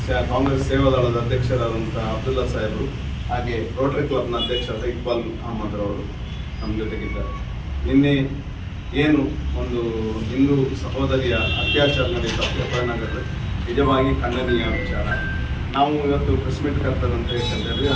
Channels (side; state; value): both; identical; correlation 1.00